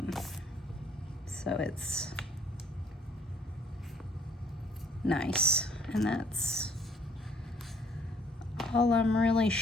So it's nice. And that's all I'm really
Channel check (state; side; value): normal; both; correlation 0.62